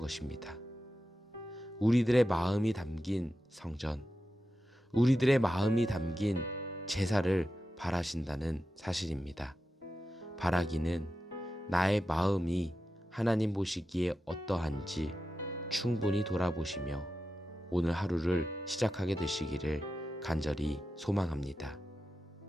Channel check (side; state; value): both; normal; correlation 0.91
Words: 우리들의 마음이 담긴 성전, 우리들의 마음이 담긴 제사를 바라신다는 사실입니다. 바라기는 나의 마음이 하나님 보시기에 어떠한지 충분히 돌아보시며 오늘 하루를 시작하게 되시기를 간절히 소망합니다.